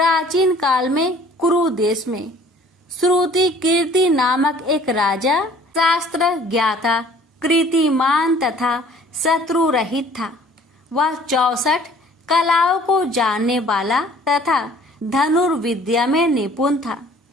काल में कुरु देश में श्रुति कीर्ति नामक एक राजा शास्त्र ज्ञाता, कीर्तिमान तथा शत्रु रहित था। वह 64 कलाओं को जानने वाला तथा धनुर्विद्या में निपुण था।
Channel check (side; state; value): both; normal; correlation 0.53